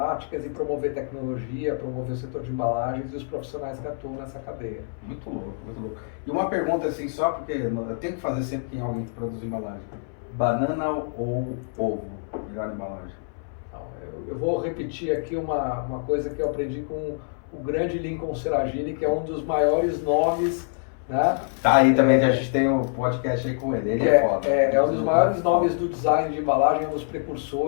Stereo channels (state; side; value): silent; right; 59 dB below the other